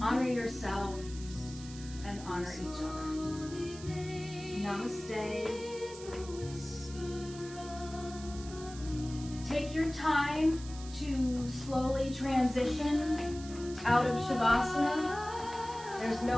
honor yourself, and honor each other. Namaste. Take your time to slowly transition out of Shavasana. There's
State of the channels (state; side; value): noise; right; hiss, 16 dB below the sound